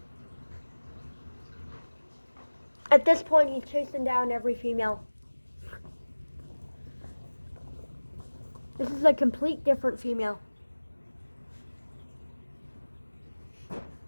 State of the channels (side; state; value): both; inverted; correlation -1.00